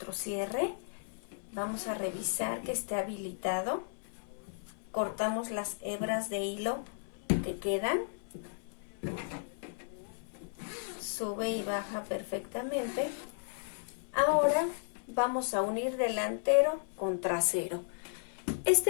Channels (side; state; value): right; silent; 55 dB below the other